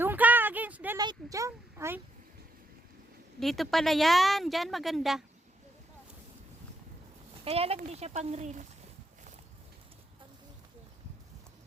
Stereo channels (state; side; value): normal; both; correlation 0.79